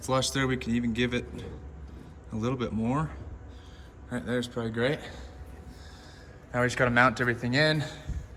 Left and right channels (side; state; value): both; identical; correlation 1.00